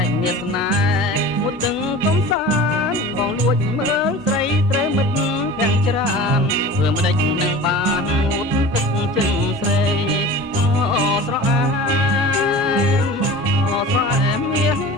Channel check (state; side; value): normal; both; correlation 0.37